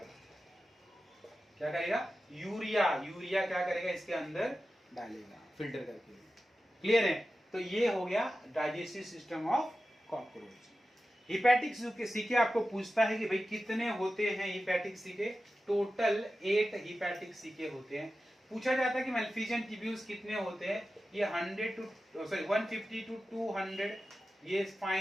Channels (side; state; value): both; normal; correlation 0.93